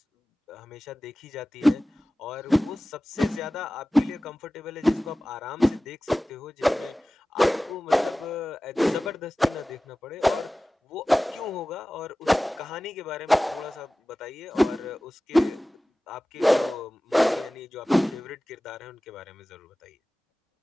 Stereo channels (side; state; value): both; normal; correlation 0.97